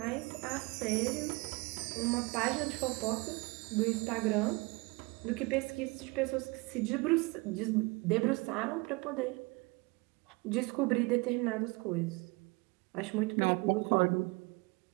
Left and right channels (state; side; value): quieter; left; 26.4 dB